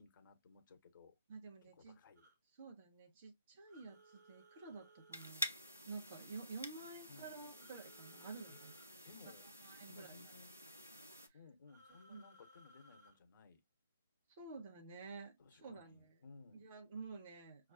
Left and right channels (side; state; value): both; inverted; correlation -0.68